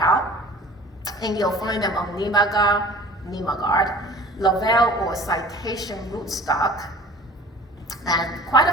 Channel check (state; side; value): normal; both; correlation 0.45